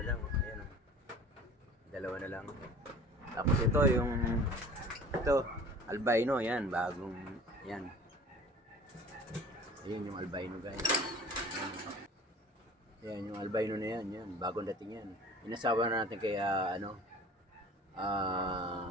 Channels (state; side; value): normal; both; correlation 0.44